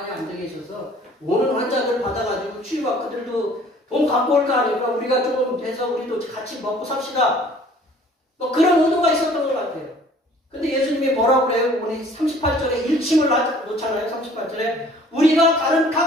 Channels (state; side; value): normal; both; correlation 0.53